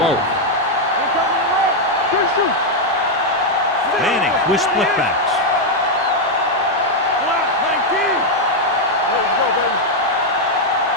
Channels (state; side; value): normal; both; correlation 0.00